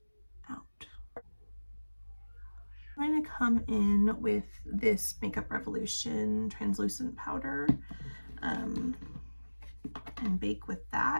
out. I'm going to come in with this Makeup Revolution translucent powder and bake with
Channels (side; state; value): both; inverted; correlation -1.00